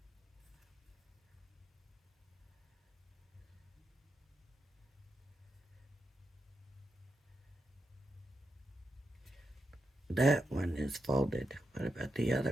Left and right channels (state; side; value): normal; both; correlation 0.86